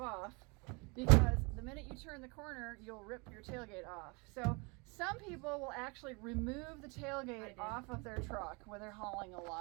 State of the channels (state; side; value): quieter; left; 29.8 dB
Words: because the minute you turn the corner, you'll rip your tailgate off. So some people will actually remove the tailgate off of their truck when they're hauling a